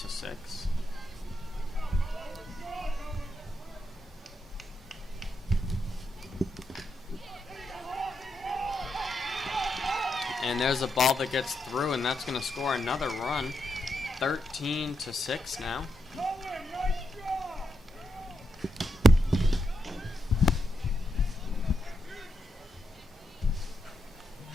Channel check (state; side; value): normal; both; correlation 0.83